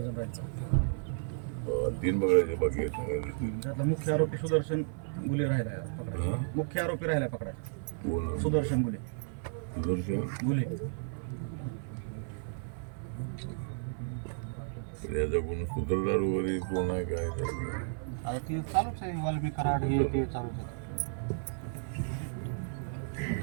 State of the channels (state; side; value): silent; left; 56 dB below the other